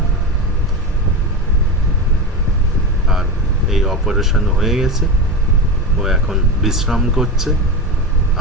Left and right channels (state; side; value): normal; both; correlation 0.21